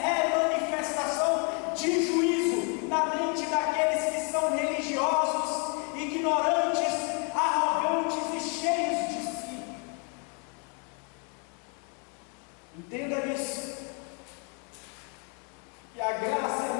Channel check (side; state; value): right; quieter; 37.1 dB